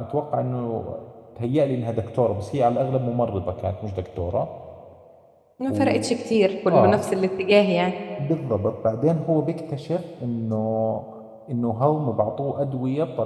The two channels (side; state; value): both; identical; correlation 1.00